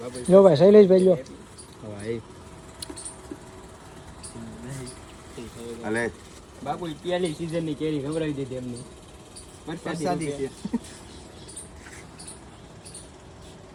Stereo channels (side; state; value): both; identical; correlation 1.00